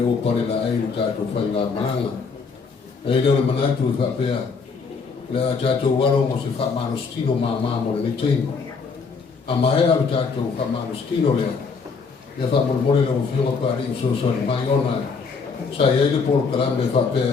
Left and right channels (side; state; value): right; quieter; 5.0 dB